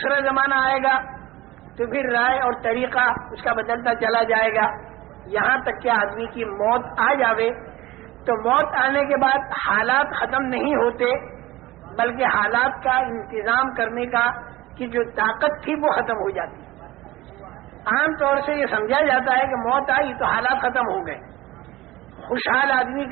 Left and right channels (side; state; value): left; quieter; 18.1 dB